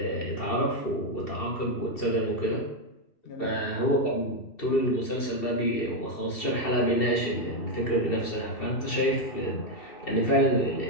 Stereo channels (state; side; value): late; right; 2.7 ms